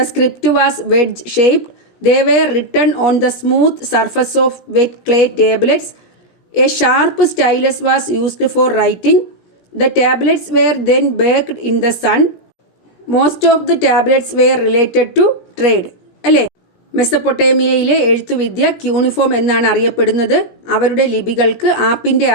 script was wedge-shaped. They were written on the smooth surface of wet clay tablets. A sharp stylus was used for writing. The tablets were then baked in the sun. Most of the tablets were related to trade. അല്ലേ? മെസ്സപ്പൊട്ടേമിയയിലെ എഴുത്തുവിദ്യ cuneiform എന്നാണ് അറിയപ്പെടുന്നത്. അവരുടെ ലിപികൾക്ക് ആപ്പിൻ്റെ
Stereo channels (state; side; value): late; right; 17 ms